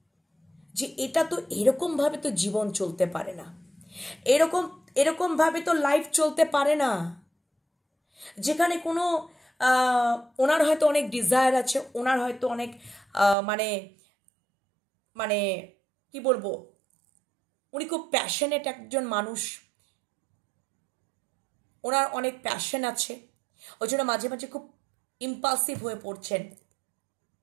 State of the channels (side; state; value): left; drops out; at 13.4 s